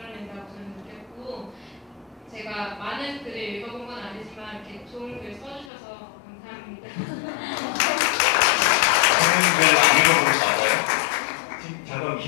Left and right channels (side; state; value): right; drops out; at 5.7 s